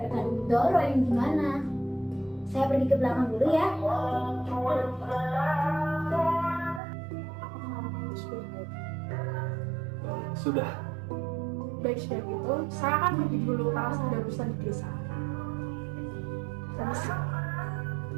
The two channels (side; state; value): left; drops out; at 6.8 s